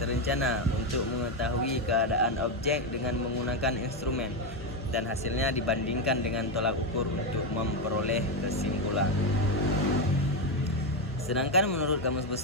terencana untuk mengetahui keadaan objek dengan menggunakan instrumen, dan hasilnya dibandingkan dengan tolak ukur untuk memperoleh kesimpulan. Sedangkan menurut Kamus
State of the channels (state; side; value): normal; both; correlation 0.08